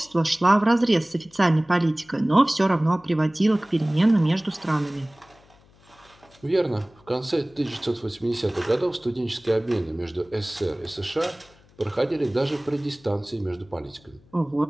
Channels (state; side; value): noise; left; hum, 29 dB below the sound